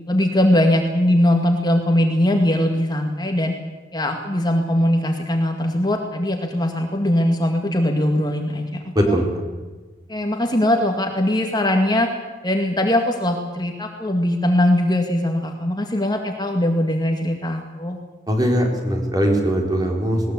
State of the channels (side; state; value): both; normal; correlation 0.78